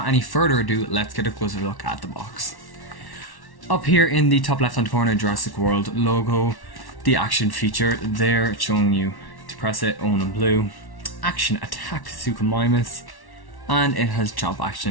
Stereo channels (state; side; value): late; right; 1.1 ms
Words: any further ado, let's get a closer look at the box. Up here in the top left hand corner, Jurassic World logo, the action feature there showing you to press it, own in blue, Action Attack Suchomimus, and it has jump